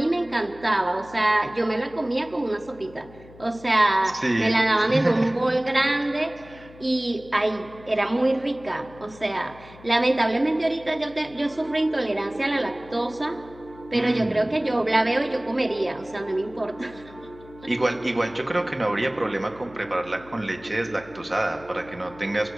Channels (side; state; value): left; noise; hum, 21 dB below the sound